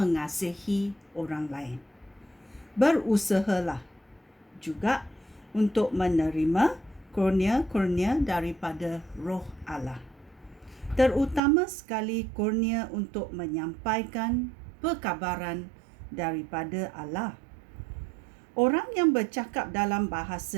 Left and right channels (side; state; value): left; drops out; at 11.4 s